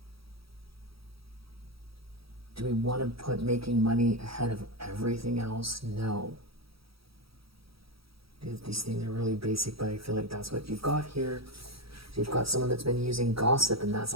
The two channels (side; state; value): left; late; 0.76 ms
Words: Do we want to put making money ahead of everything else? No. These things are really basic, but I feel like that's what you've got here. So you've got someone that's been using gossip, and that's